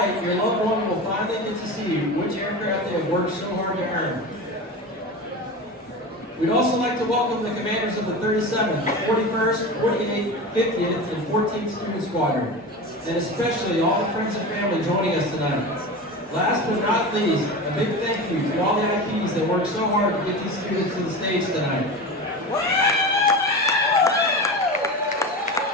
your loved one will finally get to see which aircraft they have worked so hard to earn. We'd also like to welcome the commanders of the 37th, 41st, 48th, 50th, and 14th Student Squadron, and especially all the friends and family joining us tonight. Last but not least, a big thank you to all the IPs that worked so hard to get these students to the stage tonight.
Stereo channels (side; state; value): both; normal; correlation 0.27